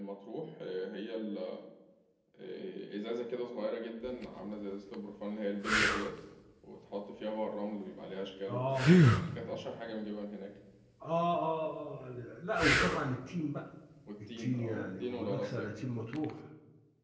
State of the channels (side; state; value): both; identical; correlation 1.00